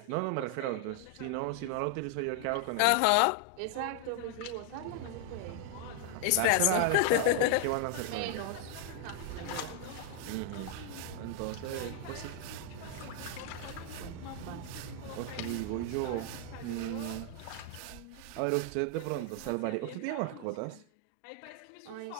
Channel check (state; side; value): different; both; correlation 0.00